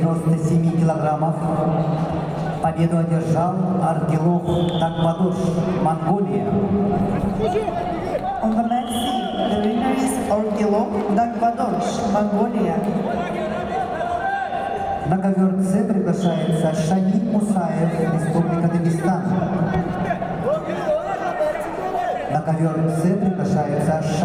килограммов победу одержал Аргилов Такбатош, Монголия. On the match C, the winner is Argilov Takbadosh, Mongolia. На ковер С приглашается Шамиль Мусаев, Республика Дагестан. На ковер С приглашается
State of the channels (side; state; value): both; identical; correlation 1.00